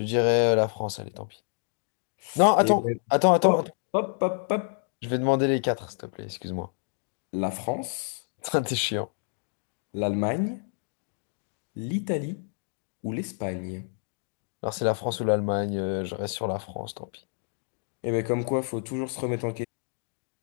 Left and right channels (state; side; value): silent; right; digital silence